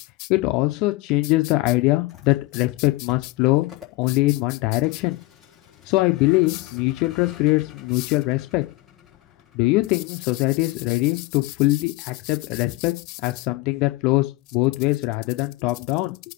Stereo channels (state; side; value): quieter; right; 20.5 dB